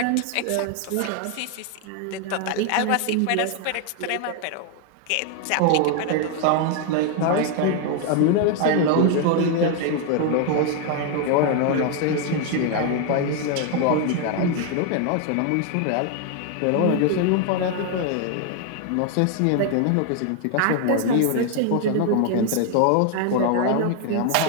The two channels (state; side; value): different; both; correlation 0.01